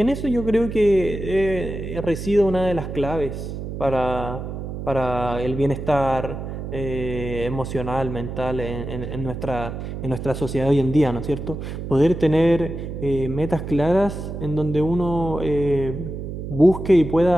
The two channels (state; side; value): noise; right; hum, 7 dB below the sound